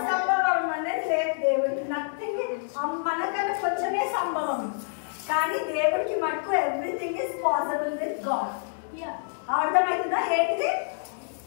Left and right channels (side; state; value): right; silent; digital silence